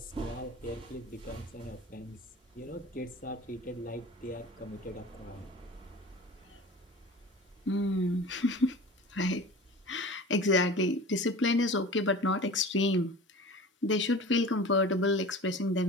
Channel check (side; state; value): both; normal; correlation 0.38